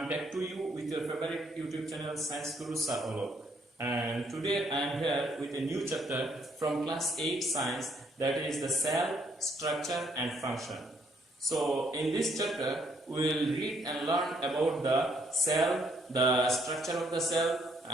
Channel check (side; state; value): both; normal; correlation 0.69